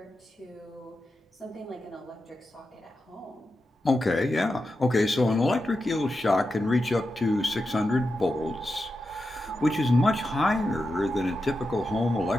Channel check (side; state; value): both; normal; correlation 0.89